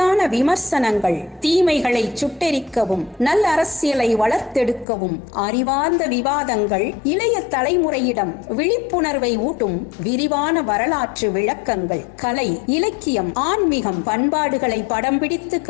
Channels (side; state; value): right; drops out; at 4.9 s